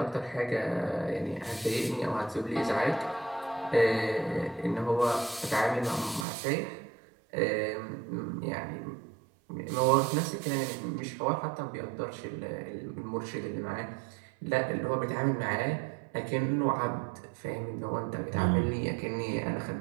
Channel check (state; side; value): drops out; left; at 6.2 s